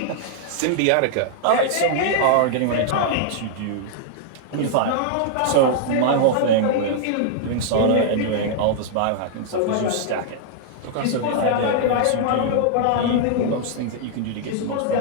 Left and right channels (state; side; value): different; both; correlation -0.01